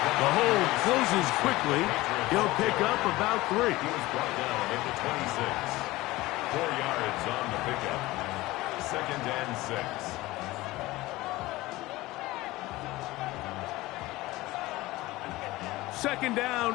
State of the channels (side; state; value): right; quieter; 19.0 dB